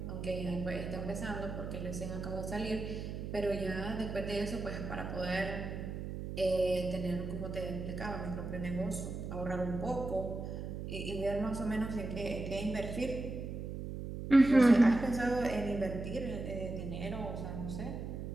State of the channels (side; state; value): right; noise; hum, 6 dB below the sound